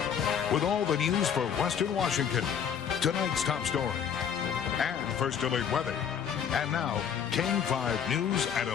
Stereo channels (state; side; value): quieter; right; 8.0 dB